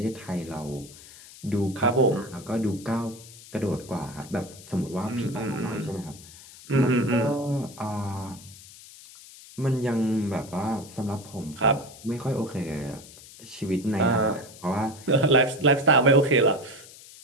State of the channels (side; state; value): left; noise; hiss, 19 dB below the sound